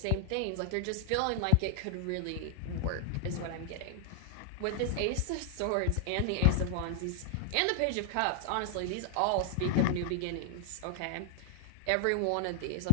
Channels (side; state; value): both; different; correlation -0.01